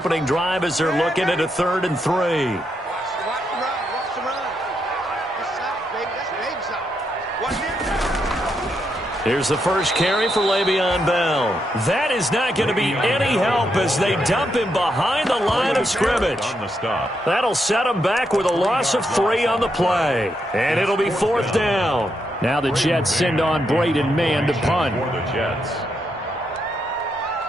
drive as they're looking at a 3rd and 3. Here's the first carry for Le'Veon Bell. That is not going to be any help as they dump him behind the line of scrimmage. That'll set him back with a loss of 3 on the play. And it'll be 4th down. Now the Jets send on Braden Mann to punt.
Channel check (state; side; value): normal; both; correlation 0.81